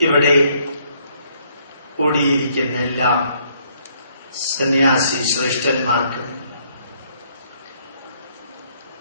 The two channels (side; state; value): both; inverted; correlation -0.68